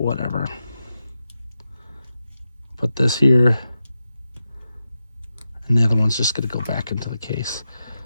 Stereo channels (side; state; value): both; inverted; correlation -0.89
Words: Put this here, and the other one's just going to go back into the case.